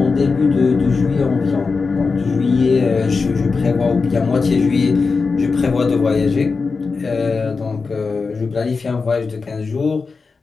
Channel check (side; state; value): right; quieter; 4.5 dB